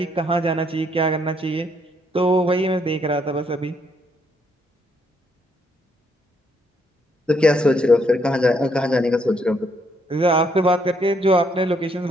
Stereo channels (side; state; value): both; normal; correlation 0.72